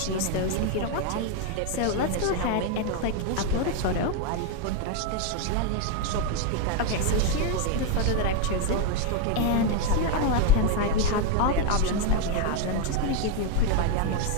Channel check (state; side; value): different; both; correlation 0.01